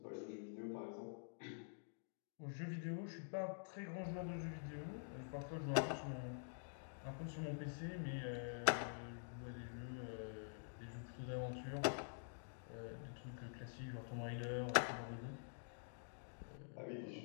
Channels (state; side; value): silent; right; digital silence